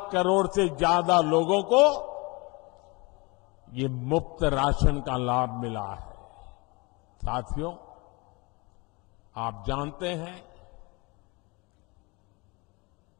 करोड़ से ज्यादा लोगों को ये मुफ्त राशन का लाभ मिला है। साथियों, आप जानते हैं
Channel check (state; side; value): quieter; right; 26.8 dB